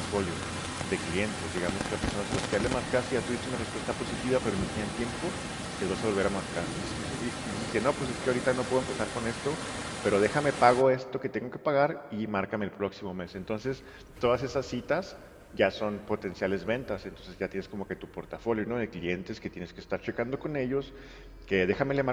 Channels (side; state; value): both; identical; correlation 1.00